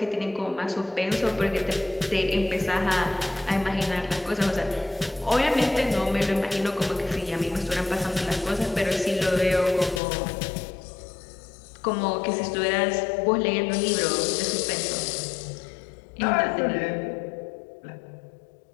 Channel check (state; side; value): drops out; right; at 10.0 s